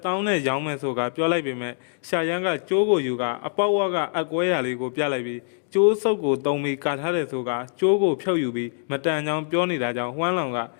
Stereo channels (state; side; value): silent; right; digital silence